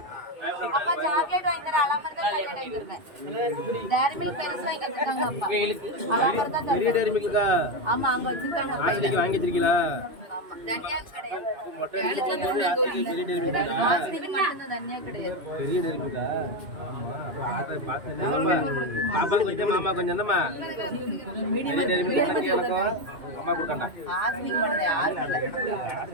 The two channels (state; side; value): late; left; 2.6 ms